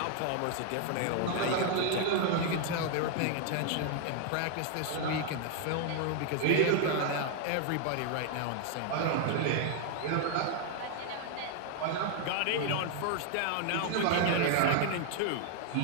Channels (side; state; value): both; different; correlation 0.00